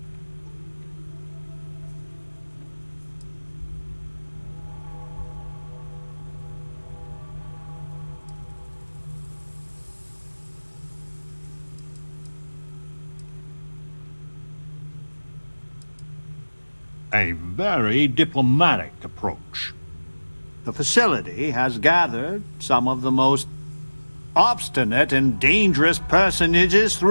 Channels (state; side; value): inverted; both; correlation -1.00